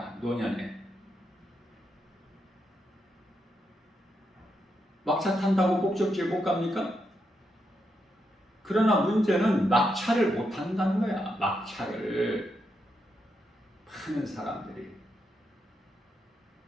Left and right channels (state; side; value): normal; both; correlation 0.83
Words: 노년에 막차 탄다고 목적지에 못 갑니까? 그러나 문제는 막차를 못 탄다는 거야. 막차를 많은 사람들이